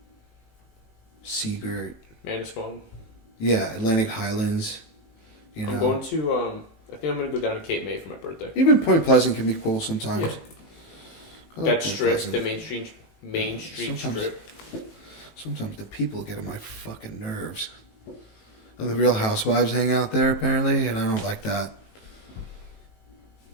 Seagirt. Manasquan. Yeah, Atlantic Highlands. I'm going to, I think I'm going to go down to Cape May for my birthday. Even Point Pleasant can be cool sometimes. Yeah. That strip, the Main Street strip. Sometimes the people get on my fucking nerves. And the Real Housewives hang out there, apparently, and I don't like that.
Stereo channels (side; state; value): right; late; 18 ms